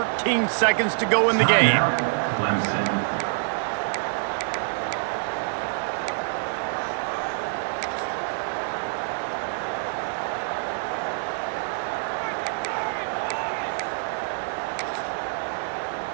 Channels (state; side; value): silent; left; digital silence